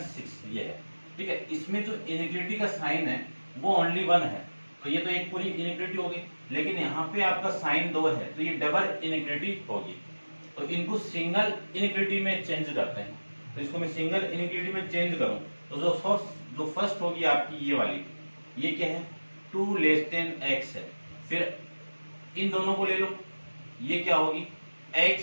6। ये है। ठीक है, इसमें जो इनइक्वालिटी का साइन है वो ओनली 1 है, तो ये तो एक पूरी इनइक्वालिटी होगी। लेकिन यहाँ पे आपका साइन 2 है, तो ये डबल इनइक्वालिटी होगी। तो इनको सिंगल इनइक्वालिटी में चेंज करते हैं। तो इसको मैं सिंगल इनइक्वालिटी में चेंज करूं तो जो फर्स्ट होगी आपकी ये वाली, ये क्या है 2 लेस देन x है। फिर इन दोनों को ले लो, ये क्या होगी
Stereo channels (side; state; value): both; inverted; correlation -1.00